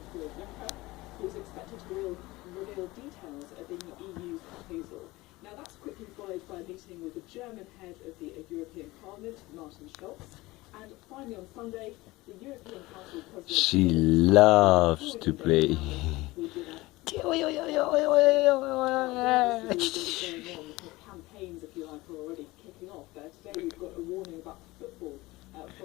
Juncker, who is expected to reveal details of the EU's proposal. Now that's quickly followed by a meeting with the German head of the European Parliament, Martin Schulz. And finally on Sunday, the European Council President... She loves to play. Campaigns, if you like, are already kicking off. Today we've got a warning about football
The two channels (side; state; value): right; quieter; 20.3 dB